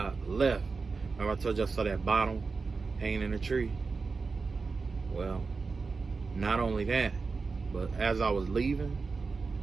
left, remember I told you I saw that bottle hanging in a tree? Well, not only that, but as I was leaving,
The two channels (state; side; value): quieter; left; 4.4 dB